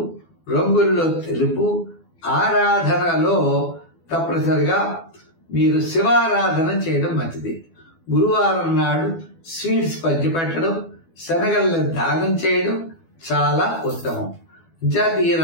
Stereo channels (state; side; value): late; right; 12 ms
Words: రంగుల్లో తెలుపు, ఆరాధనలో తప్పనిసరిగా మీరు శివారాధన చేయడం మంచిది. గురువారం నాడు స్వీట్స్ పంచిపెట్టడం, శనగలను దానం చేయడం చాలా ఉత్తమం. జాతీయ